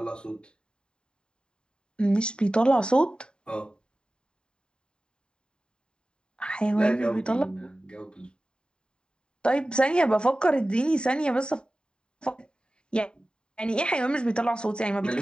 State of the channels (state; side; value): late; right; 0.049 ms